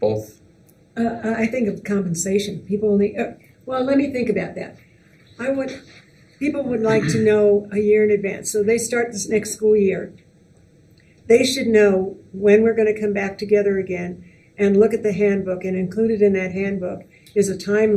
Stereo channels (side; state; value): both; identical; correlation 1.00